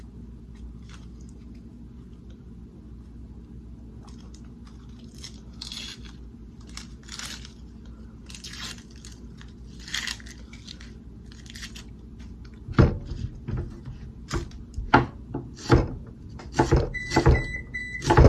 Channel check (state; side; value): identical; both; correlation 1.00